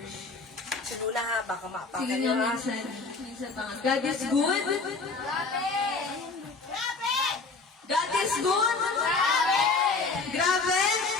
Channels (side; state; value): right; quieter; 4.1 dB